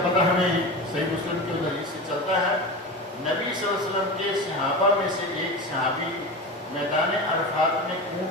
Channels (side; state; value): both; normal; correlation 0.26